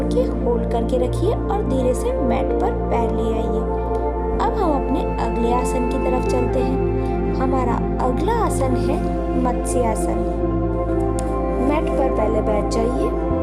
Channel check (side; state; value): both; identical; correlation 1.00